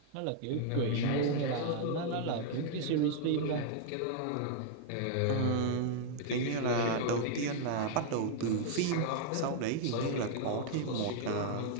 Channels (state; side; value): different; both; correlation -0.01